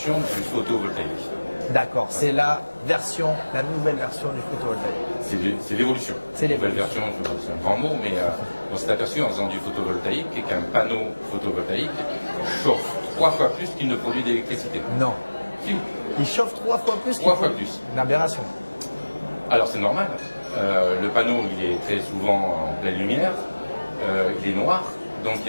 du photovoltaïque. D'accord, c'est la nouvelle version du photovoltaïque. C'est l'évolution. C'est Nouvelle l'évolution. version, c'est un grand mot, mais on s'est aperçu en faisant du photovoltaïque qu'un panneau photovoltaïque chauffe 3 fois plus qu'il ne produit d'électricité. Non. Si. Il chauffe 3 fois plus. 3 fois plus. Une aberration. Alors c'est normal. Le panneau, il est très souvent en pleine lumière, il est noir, donc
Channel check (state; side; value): inverted; both; correlation -1.00